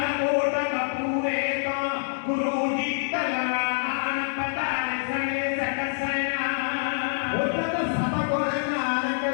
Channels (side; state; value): right; silent; digital silence